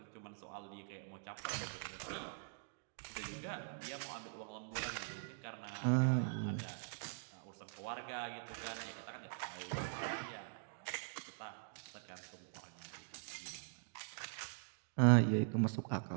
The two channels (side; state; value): left; silent; digital silence